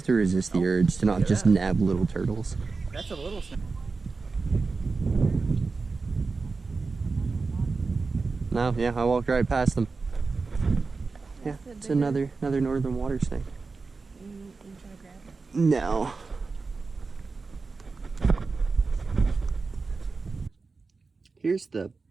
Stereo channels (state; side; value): quieter; left; 4.2 dB